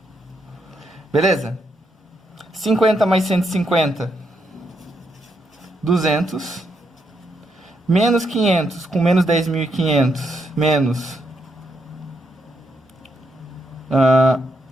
Beleza? 50 mais 150, 200. Menos 500, com menos 10.500, menos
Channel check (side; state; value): both; normal; correlation 0.79